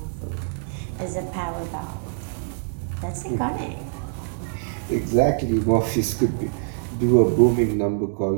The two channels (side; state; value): left; silent; digital silence